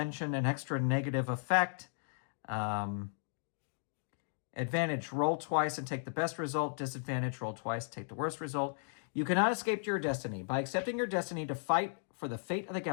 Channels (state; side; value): silent; right; digital silence